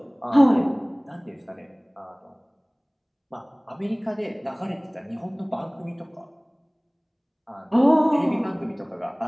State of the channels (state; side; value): identical; both; correlation 1.00